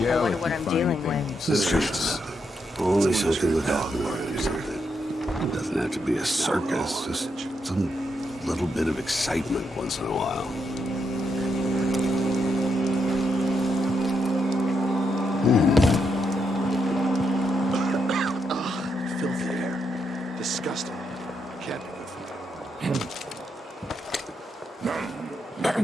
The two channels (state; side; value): normal; both; correlation 0.81